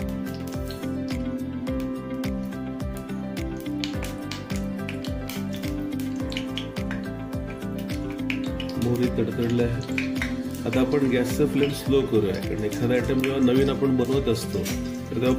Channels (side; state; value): both; identical; correlation 1.00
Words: मोहरी तडतडले आहे. आता आपण गॅसचा फ्लेम स्लो करूया, कारण एखादा आयटम जेव्हा नवीन आपण बनवत असतो तर तेव्हा